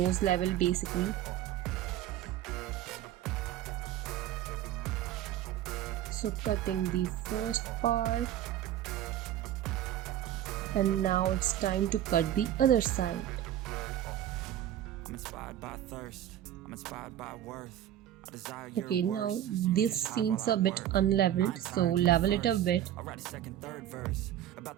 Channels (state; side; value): quieter; left; 11.8 dB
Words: level basically. So cutting the first part, and now it's time to cut the other side. Okay, now this seems a bit unleveled, so level it a bit.